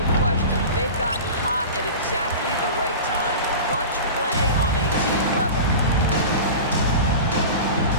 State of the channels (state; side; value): inverted; both; correlation -0.32